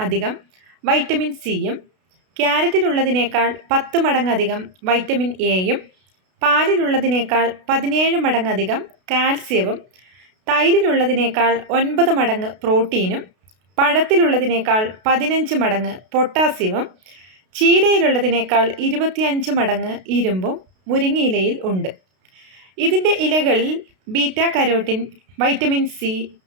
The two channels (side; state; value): left; late; 32 ms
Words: അധികം വൈറ്റമിൻ സിയും ക്യാരറ്റിലുള്ളതിനേക്കാൾ 10 മടങ്ങ് അധികം വൈറ്റമിൻ എയും പാലിലുള്ളതിനേക്കാൾ 17 മടങ്ങധികം കാൽസ്യവും തൈരിലുള്ളതിനേക്കാൾ 9 മടങ്ങ് പ്രോട്ടീനും പഴത്തിലുള്ളതിനേക്കാൾ 15 മടങ്ങ് പൊട്ടാസ്യവും ചീരയിലുള്ളതിനേക്കാൾ 25 മടങ്ങ് ഇരുമ്പും മുരിങ്ങയിലയിൽ ഉണ്ട്. ഇതിൻ്റെ ഇലകളിൽ beta carotene, vitamin C,